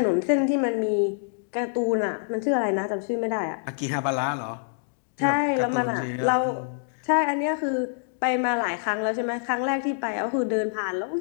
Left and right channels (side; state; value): right; silent; digital silence